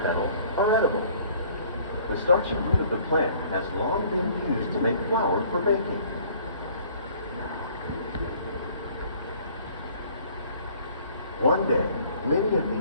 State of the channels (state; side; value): inverted; both; correlation -0.55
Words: petals, are edible. The starchy root of the plant has long been used to make flour for baking. One day, many of